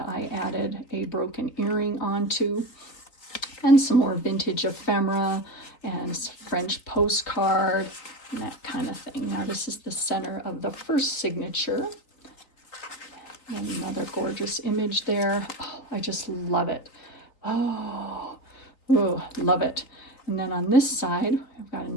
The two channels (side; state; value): right; late; 3.6 ms